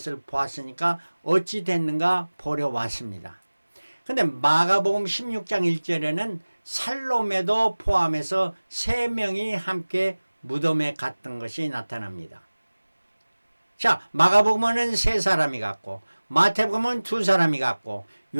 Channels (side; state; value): both; inverted; correlation -1.00